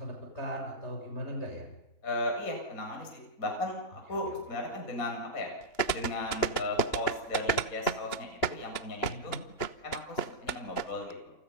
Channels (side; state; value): right; late; 3.0 ms